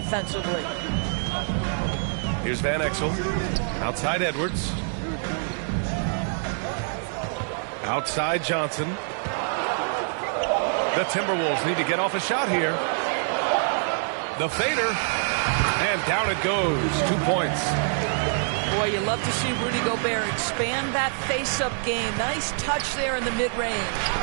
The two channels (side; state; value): left; silent; 61 dB below the other